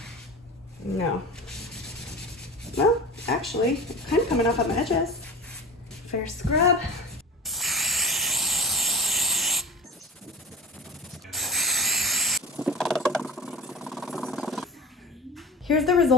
No. Well, actually, it's kind of coming off on the edges. Fair scrub. Here's the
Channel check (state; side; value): normal; both; correlation 0.35